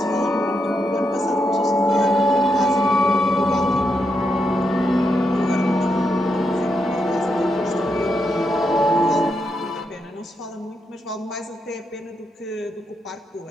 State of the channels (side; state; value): both; normal; correlation 0.82